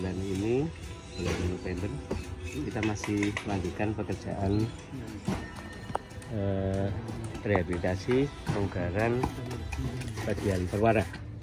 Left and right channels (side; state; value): both; identical; correlation 1.00